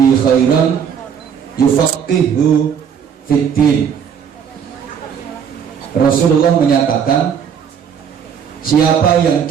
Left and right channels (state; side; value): quieter; left; 7.6 dB